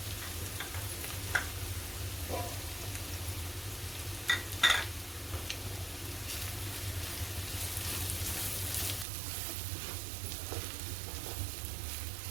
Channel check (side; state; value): left; drops out; at 9.1 s